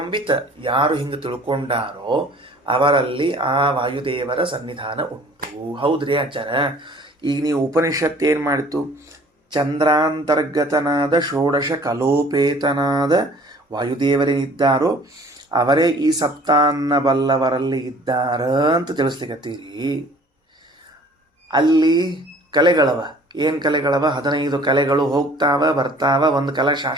ವಿತ್, ಯಾರು ಹಿಂಗೆ ತಿಳ್ಕೊಂಡಾರೋ ಅವರಲ್ಲಿ ಆ ವಾಯುದೇವರ ಸನ್ನಿಧಾನ ಉಂಟು. ಹೌದ್ರಿ ಆಚಾರ, ಈಗ ನೀವು ಉಪನಿಷತ್ತು ಏನು ಮಾಡಿತು? ಚಂದ್ರಾಂತರ್ಗತನಾದ ಷೋಡಶ ಕಲೋಪೇತನಾದ ವಾಯುದೇವರೇನಿದ್ದಾರೋ ಅವರೇ ಈ ಸಪ್ತಾನ್ನ ಬಲ್ಲವರಲ್ಲಿ ಇದ್ದಾರ ಅಂತ ತಿಳಿಸ್ಲಿಕ್ಕತ್ತೀರಿ. ಅಲ್ಲಿ ಕಲೆಗಳವ, ಏನು ಕಲೆಗಳವ? 15 ಕಲೆಗಳು ಹೋಗ್ತಾವ ಬರ್ತಾವ, ಒಂದು ಕಲೆ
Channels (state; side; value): normal; both; correlation 0.52